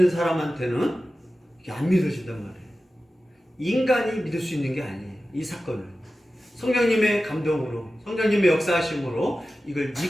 사람한테는 이게 안 믿어진단 말이에요. 인간이 믿을 수 있는 게 아니에요. 이 사건을 성령님의 감동으로 성령님의 역사하심으로 이걸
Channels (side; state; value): both; normal; correlation 0.94